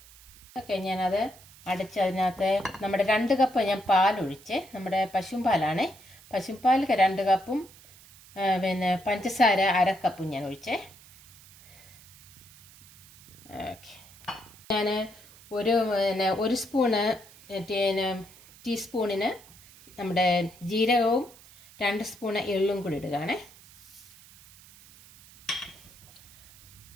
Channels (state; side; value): noise; right; hiss, 23 dB below the sound